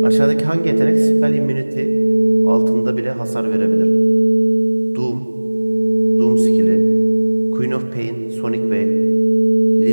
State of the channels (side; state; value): both; inverted; correlation -1.00